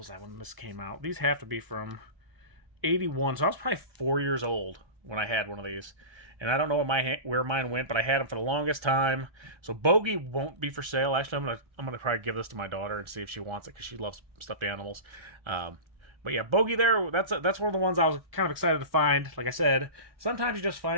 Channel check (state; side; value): late; left; 1.3 ms